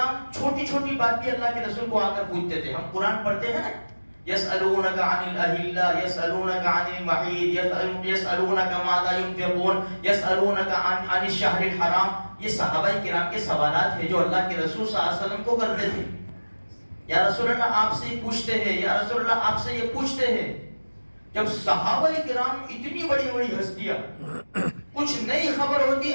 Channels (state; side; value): inverted; both; correlation -1.00